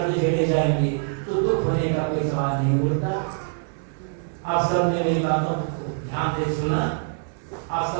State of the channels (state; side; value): silent; left; 62 dB below the other